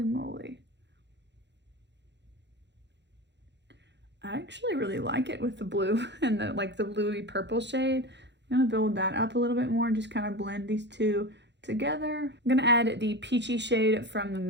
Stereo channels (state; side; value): late; left; 0.51 ms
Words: moly. I actually really like it with the blue and the like the bluey purple shade. I'm gonna build that up a little bit more and just kind of blend these two together. I'm gonna add the peachy shade from the